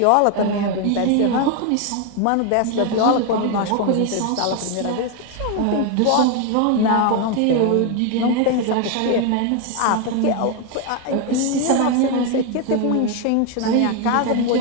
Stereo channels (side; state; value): both; different; correlation 0.01